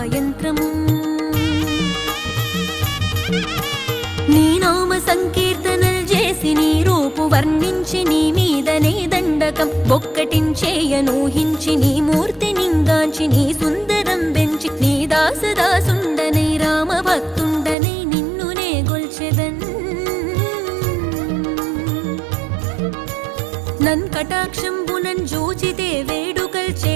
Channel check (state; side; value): drops out; left; at 17.8 s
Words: నీ నామ సంకీర్తనల్ చేసి నీ రూపు వర్ణించి నీ మీదనే దండకం బొక్కటించేయనూహించి నీ మూర్తి నింగాంచి నీ సుందరం బెంచి నీ దాసదాసుండనై రామ భక్తుండనై నిన్నునే గొల్చెదన్ నన్ కటాక్షంబునన్ జూచితే వేడుకల్